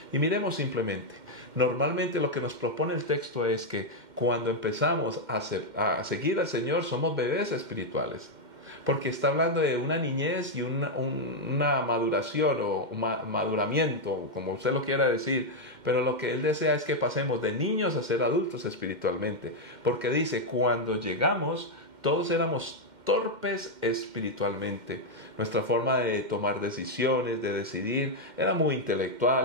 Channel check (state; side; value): late; left; 2.1 ms